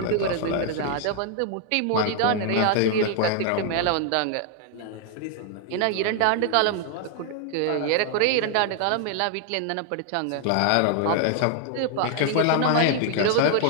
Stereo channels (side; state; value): both; different; correlation 0.00